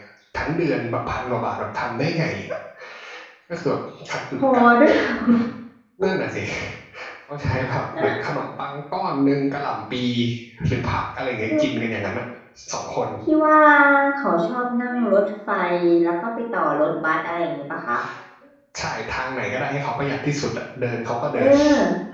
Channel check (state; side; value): identical; both; correlation 1.00